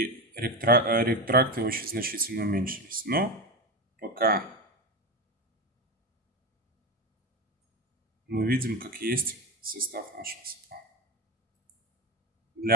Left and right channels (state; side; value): normal; both; correlation 0.19